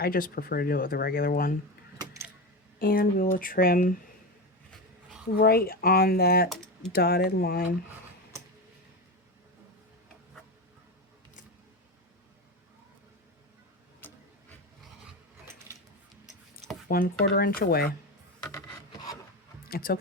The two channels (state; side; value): normal; both; correlation 0.19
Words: I just prefer to do it with a regular one. And we will trim right on that dotted line. One 1/4 inch away. It's